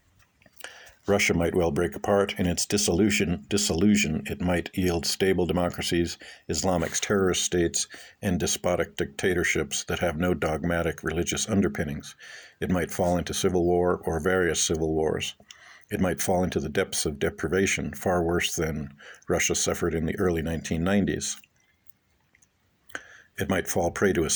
Russia might well break apart. In its dissolution, it might yield stable democracies, Islamic terrorist states, and despotic dictatorships that have no dogmatic religious underpinnings. It might fall into civil war or various civil wars. It might fall into the depths of deprivation, far worse than Russia suffered in the early 1990s. It might fall prey to a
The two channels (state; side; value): identical; both; correlation 1.00